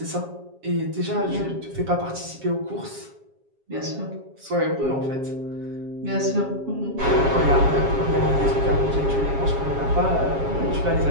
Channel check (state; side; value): late; left; 7.3 ms